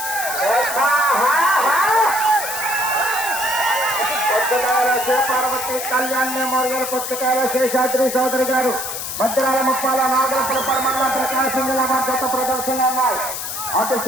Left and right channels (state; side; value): noise; left; hiss, 5 dB below the sound